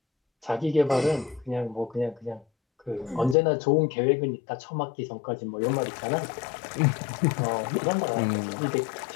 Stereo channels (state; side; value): drops out; right; at 3.4 s